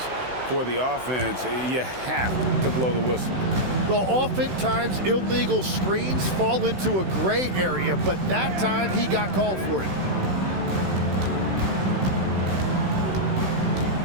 for the offense, you have to blow the whistle. Well, oftentimes illegal screens fall into a gray area, but that time he got called for it.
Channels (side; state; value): left; late; 16 ms